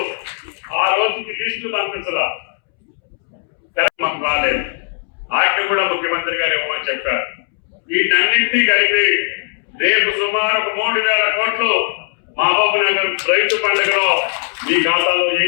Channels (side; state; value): right; silent; 67 dB below the other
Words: ఆ రోజుకి లిస్టు పంపించరా, మాకు రాలేదు. వాటిని కూడా ముఖ్యమంత్రి గారు ఇవ్వమని చెప్పారు. వీటన్నింటినీ కలిపి రేపు సుమారు 3,000 కోట్లు మహబూబ్ నగర్ రైతు పండుగలో మీ ఖాతాలో